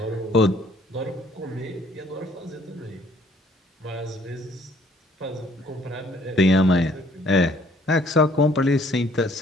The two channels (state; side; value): normal; both; correlation 0.61